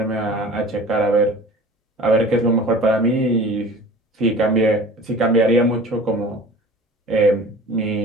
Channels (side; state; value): both; normal; correlation 0.42